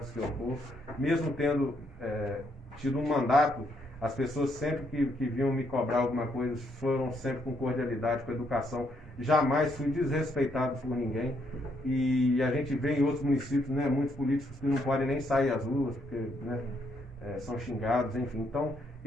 que eu for, mesmo tendo tido um mandato. As pessoas sempre que vinham me cobrar alguma coisa foram sempre com cordialidade, com educação. Jamais fui desrespeitado por ninguém. E a gente vê em outros municípios, né, muitos políticos que não podem nem sair às ruas, porque né, são xingados, enfim. Então,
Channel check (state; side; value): normal; both; correlation 0.74